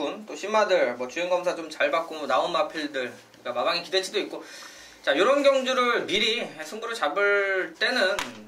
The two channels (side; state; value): both; identical; correlation 1.00